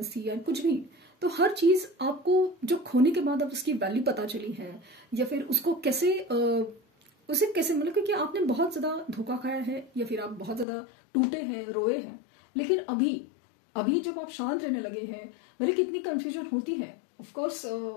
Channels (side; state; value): right; drops out; at 10.7 s